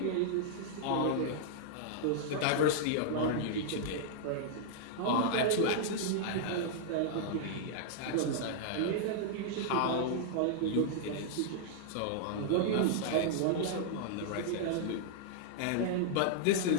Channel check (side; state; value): both; different; correlation -0.01